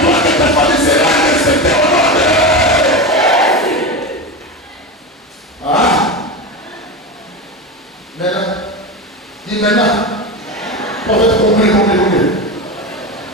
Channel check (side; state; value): both; normal; correlation 0.21